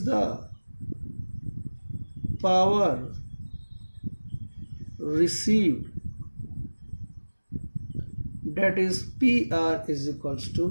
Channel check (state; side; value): inverted; both; correlation -1.00